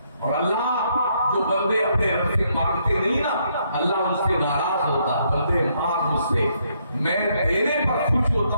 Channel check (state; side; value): inverted; both; correlation -0.73